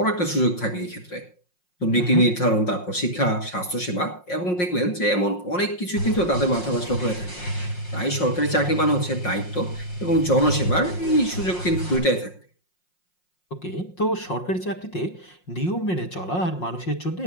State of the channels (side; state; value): right; late; 5.6 ms